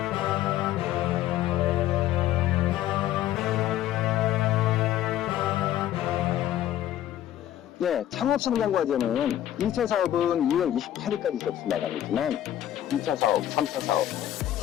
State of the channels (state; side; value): quieter; right; 12.4 dB